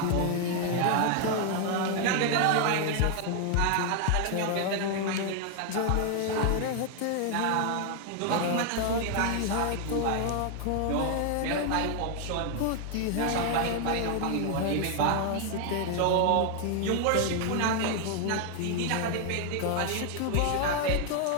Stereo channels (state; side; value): different; both; correlation 0.00